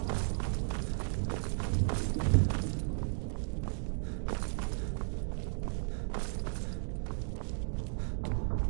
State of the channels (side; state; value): left; silent; digital silence